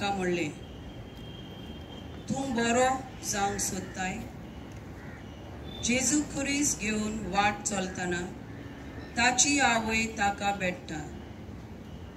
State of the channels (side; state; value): both; identical; correlation 1.00